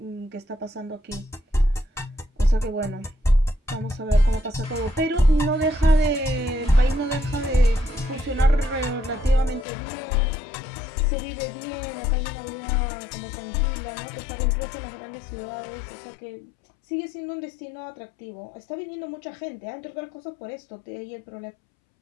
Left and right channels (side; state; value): right; drops out; at 9.7 s